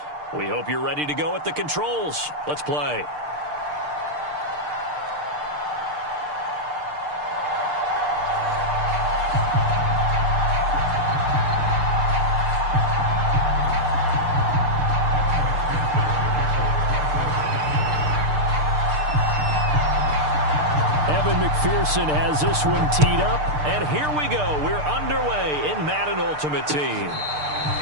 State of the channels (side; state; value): left; late; 6.7 ms